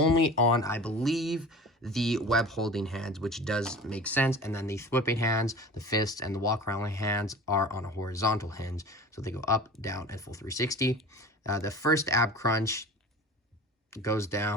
on, I believe, the web holding hands, which does make sense. And then the whipping hands, the fists, and the walk around hands are on a horizontal hinge, so they go up, down, and full 360. The first ab crunch goes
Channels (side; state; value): both; normal; correlation 0.38